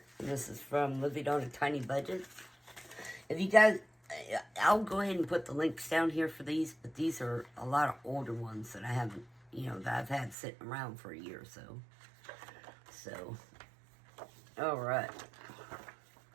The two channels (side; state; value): left; drops out; at 10.4 s